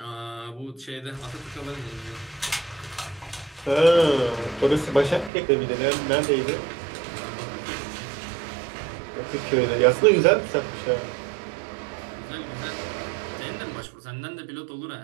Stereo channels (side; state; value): left; drops out; at 5.3 s